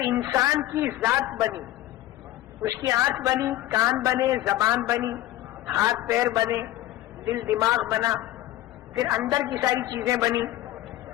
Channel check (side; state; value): right; quieter; 15.1 dB